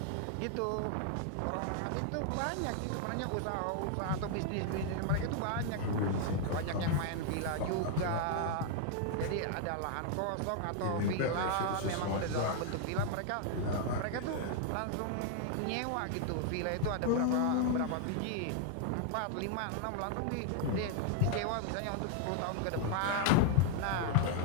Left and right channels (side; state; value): both; different; correlation 0.00